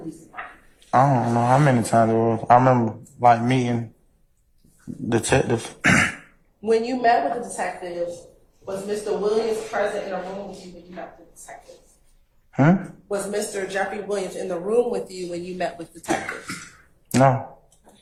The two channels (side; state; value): both; identical; correlation 1.00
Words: Department? I don't know how many times it was. I remember like meeting detectives. When you met with the detectives, was Mr. Williams present in a room with you when you met with the detectives? Was Mr. Jeffrey Williams in the room with you when you met with detectives? No.